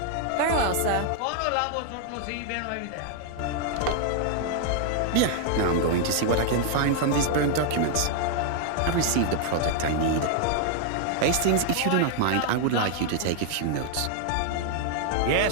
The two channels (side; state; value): both; different; correlation 0.00